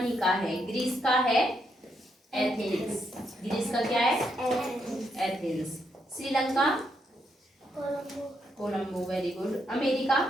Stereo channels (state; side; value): normal; both; correlation 0.78